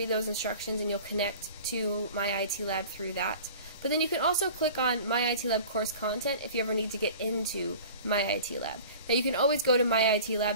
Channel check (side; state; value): both; inverted; correlation -0.42